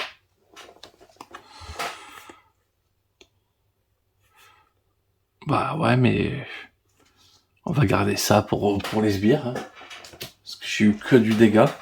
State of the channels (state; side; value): identical; both; correlation 1.00